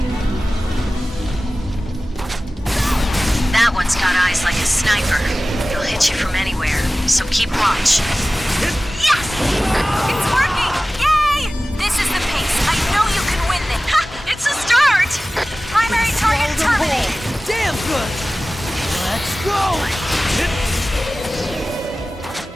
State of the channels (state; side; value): normal; both; correlation 0.97